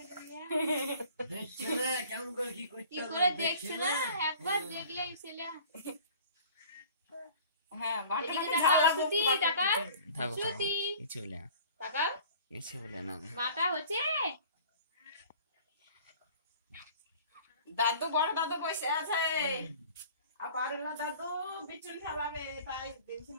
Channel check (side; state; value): both; inverted; correlation -0.47